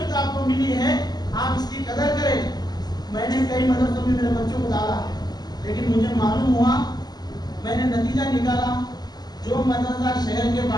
آپ کو ملی ہے, آپ اس کی قدر کریں. میں نے کئی مدرسوں میں میرے بچوں کو ڈالا ہے, لیکن مجھے معلوم ہوا, میں نے نتیجہ نکالا, جو مدرسہ شہر کے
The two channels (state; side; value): late; right; 0.20 ms